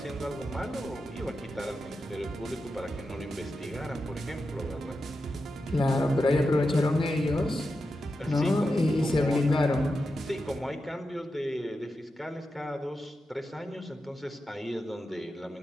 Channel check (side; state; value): both; normal; correlation 0.89